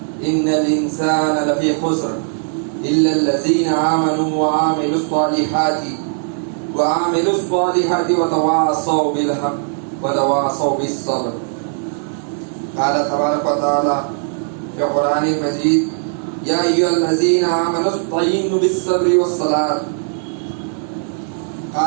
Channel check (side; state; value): left; silent; digital silence